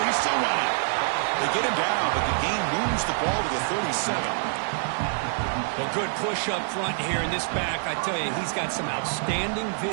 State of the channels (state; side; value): silent; left; digital silence